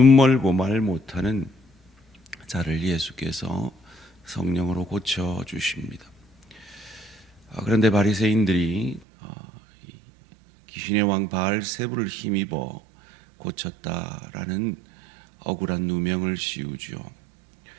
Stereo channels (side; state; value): left; drops out; at 9.0 s